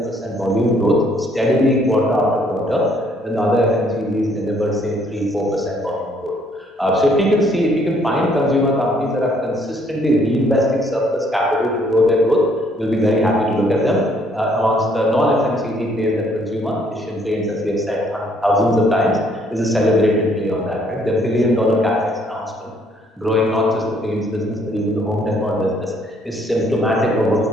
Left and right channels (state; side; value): normal; both; correlation 0.65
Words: volume growth steadily quarter after quarter, when the other FMCGs delivered say 3-4% volume growth. So if we can find consumer companies that are consistently reinvesting surplus capital to grow their growth, we'll be very happy to look at them. Amongst the non-FMCG plays that consumer, Asian Paints, as we have said thousands of times, is a celebrated play on that, right? Their billion-dollar capex announcement, growing not just the paints business but even the home decor business, is symptomatic of what